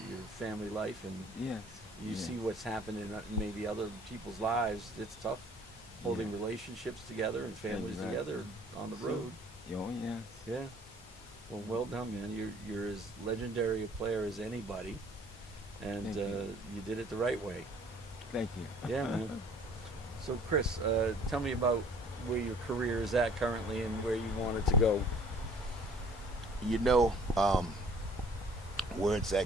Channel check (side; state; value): both; normal; correlation 0.54